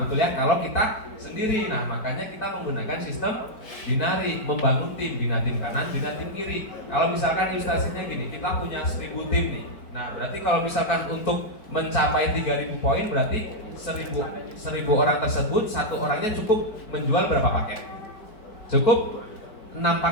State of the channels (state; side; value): late; right; 4.9 ms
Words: betul ya, kalau kita sendiri. Nah, makanya kita menggunakan sistem binari, membangun tim, binatim kanan, binatim kiri. Kalau misalkan ilustrasinya gini, kita punya 1.000 tim nih. Nah, berarti kalau misalkan untuk mencapai 3.000 poin, berarti 1.000 orang tersebut, satu orangnya cukup menjual berapa paket? Cukup 6